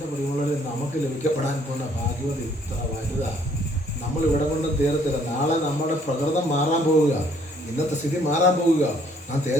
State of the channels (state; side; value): normal; both; correlation 0.63